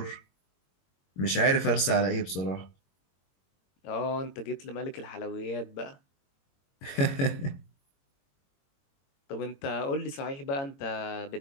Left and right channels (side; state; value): right; late; 22 ms